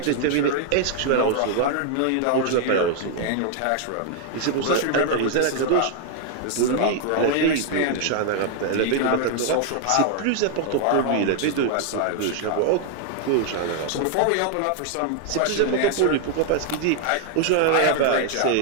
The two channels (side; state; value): both; different; correlation 0.00